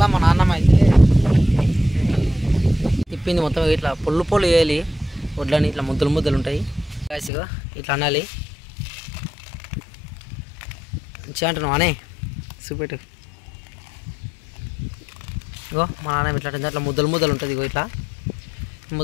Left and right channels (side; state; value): right; drops out; at 7.3 s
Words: మా నాన్నమ్మ అయితే తిప్పింది మొత్తం. ఇట్లా పొల్లు వేయాలి వడ్లని, ఇట్లా ముద్దలు ఉంటాయి. ఇగో ఇట్లా అనాలి. మంచిగా అంటున్నావు అనే చూపెట్టు. ఇగో మా నాన్న ఇట్లా అట్లా ముద్దలు ఉంటుంది. ఇగో ఇట్లా